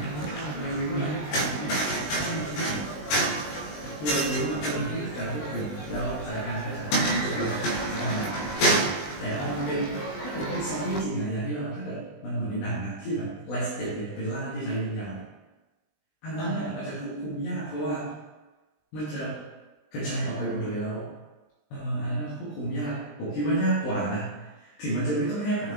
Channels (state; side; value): late; right; 20 ms